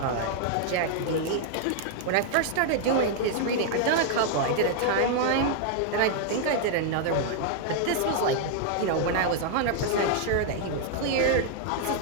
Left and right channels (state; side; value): different; both; correlation 0.00